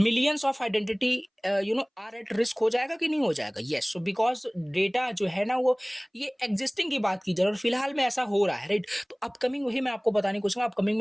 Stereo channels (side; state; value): both; identical; correlation 1.00